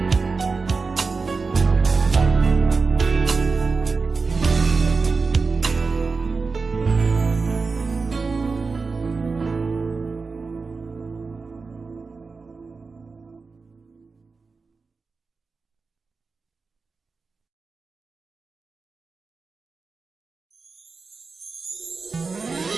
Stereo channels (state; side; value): quieter; left; 4.4 dB